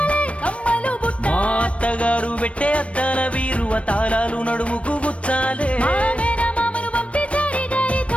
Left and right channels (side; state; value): right; late; 0.062 ms